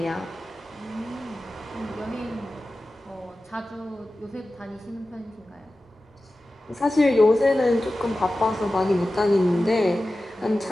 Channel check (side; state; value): both; normal; correlation 0.95